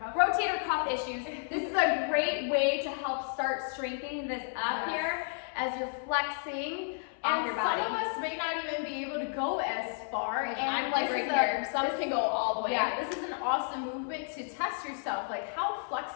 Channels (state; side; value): silent; right; 57 dB below the other